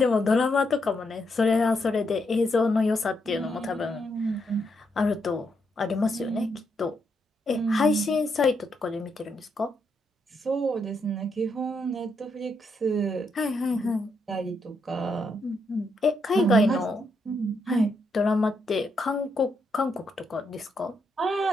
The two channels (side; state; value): both; normal; correlation 0.79